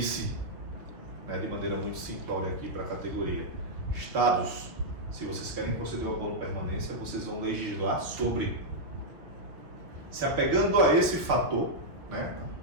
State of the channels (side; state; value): left; late; 6.0 ms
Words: né, de maneira muito simplória aqui para a categoria: estados, se vocês querem conceder o abono permanência, vocês vão legislar sobre. Se apegando a esse fator, né,